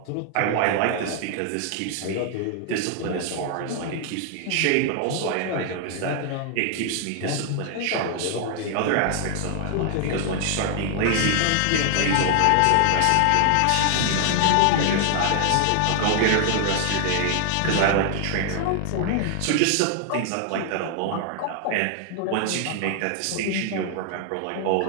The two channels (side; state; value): both; different; correlation 0.00